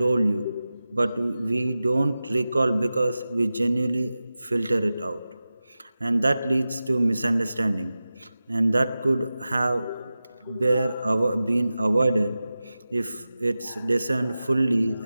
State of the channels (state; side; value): inverted; both; correlation -0.94